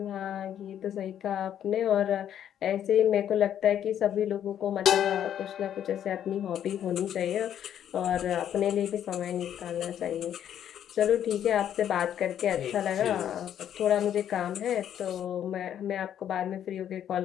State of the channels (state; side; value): quieter; right; 10.0 dB